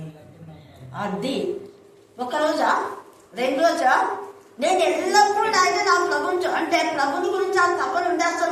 అది ఒక రోజా 2 రోజా? నేను ఎల్లప్పుడూ అయితే నా ప్రభుత్వం అంటే ప్రభుని గురించి ఆ తప్పని ఉండే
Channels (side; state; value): both; identical; correlation 1.00